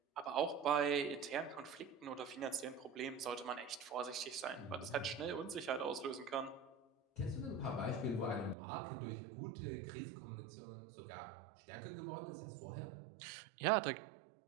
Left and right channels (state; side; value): drops out; left; at 8.6 s